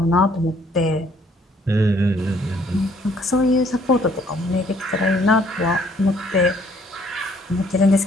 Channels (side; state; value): both; normal; correlation 0.63